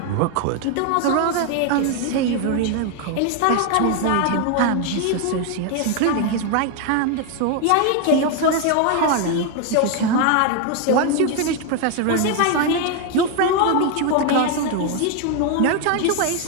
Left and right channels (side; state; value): both; different; correlation 0.01